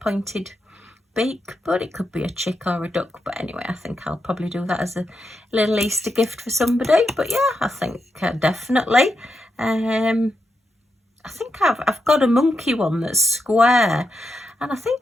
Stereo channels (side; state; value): both; normal; correlation 0.85